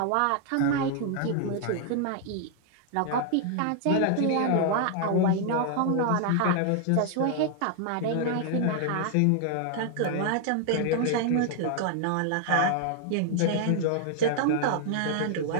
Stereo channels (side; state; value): both; different; correlation 0.00